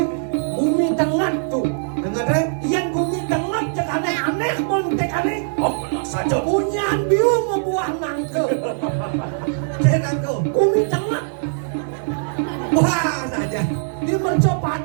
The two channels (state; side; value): silent; left; digital silence